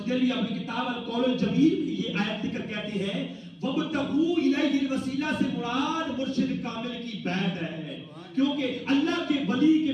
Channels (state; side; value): identical; both; correlation 1.00